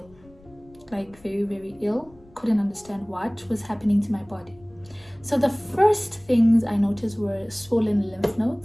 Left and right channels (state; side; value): noise; left; rumble, 26 dB below the sound